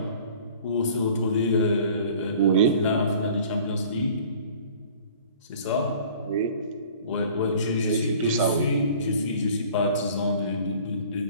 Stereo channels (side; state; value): both; inverted; correlation -0.49